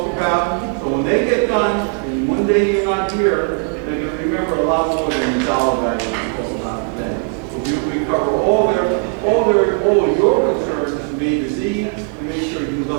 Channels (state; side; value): quieter; left; 38.7 dB